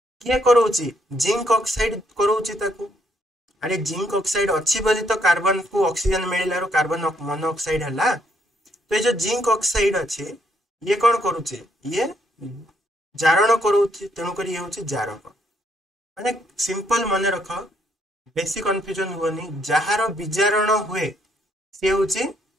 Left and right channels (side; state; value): both; normal; correlation 0.72